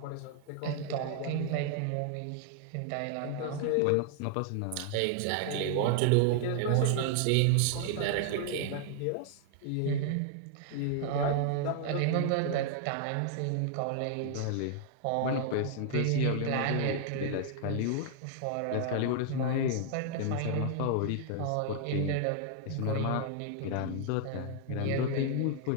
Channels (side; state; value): both; different; correlation 0.00